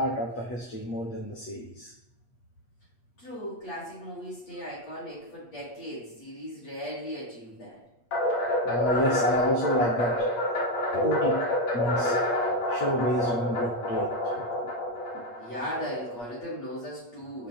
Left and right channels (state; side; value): late; right; 8.4 ms